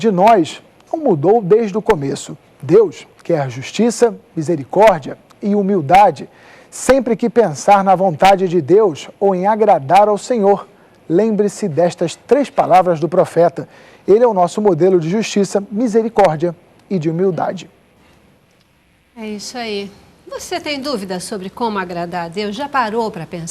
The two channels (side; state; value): both; identical; correlation 1.00